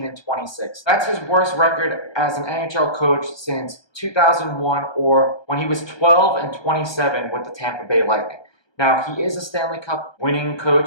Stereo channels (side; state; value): right; late; 1.2 ms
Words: That's his worst record as an NHL coach since 2001, or when he was 12-27 with the Tampa Bay Lightning. Now, he is a Stanley Cup winning